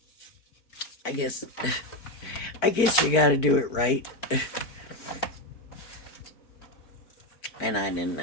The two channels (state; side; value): late; right; 4.5 ms